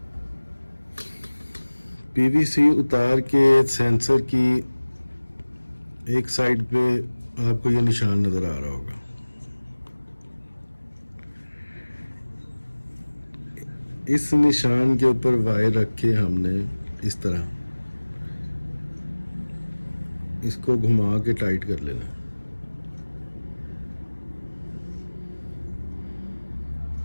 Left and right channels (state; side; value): inverted; both; correlation -1.00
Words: पीवीसी उतार के सेंसर की एक साइड पे आपको ये निशान नजर आ रहा होगा। इस निशान के ऊपर वायर रख के हमने इस तरह इसको घुमा के टाइट कर लेना।